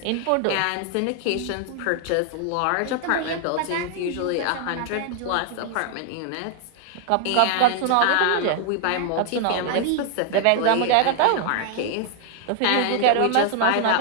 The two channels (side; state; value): both; different; correlation 0.00